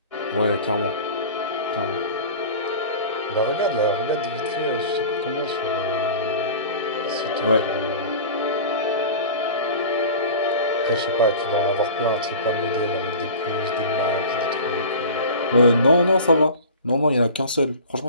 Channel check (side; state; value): both; inverted; correlation -0.37